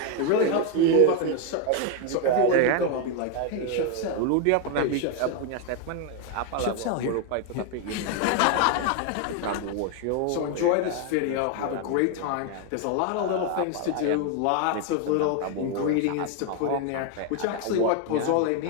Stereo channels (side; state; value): both; different; correlation 0.01